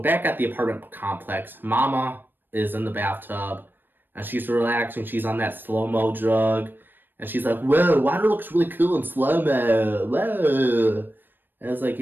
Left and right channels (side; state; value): left; late; 0.094 ms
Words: back at the apartment complex, Mama is in the bathtub, and she's relaxing. She's on that slow-mo drug, and she's like, whoa, water looks really cool in slow-mo, whoa. And it's like,